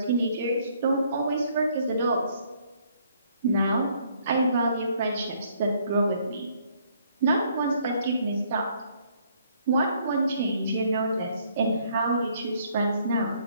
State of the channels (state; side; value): inverted; both; correlation -0.65